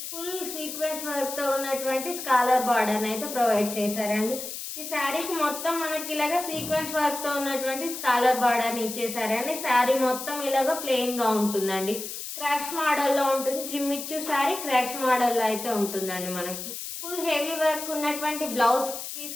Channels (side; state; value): left; noise; hiss, 8 dB below the sound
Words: ఫుల్ సీక్వెన్స్ వర్క్ తో ఉన్నటువంటి స్కాలర్ బార్డర్ అయితే ప్రొవైడ్ చేశారండి. ఈ శారీకి మొత్తం మనకి ఇలాగ సీక్వెన్స్ వర్క్ తో ఉన్నటువంటి స్కాలర్ బార్డర్ ఇచ్చేసారండి. శారీ మొత్తం ఇలాగ ప్లెయిన్ గా ఉంటుందండి. క్రష్ మోడల్లో ఉంటుంది. జిమ్మిచ్చు శారీ క్రష్ మోడల్లో అయితే ఉంటుందండి. మనకి ఫుల్ హెవీ వర్క్ ఉన్నటువంటి బ్లౌజ్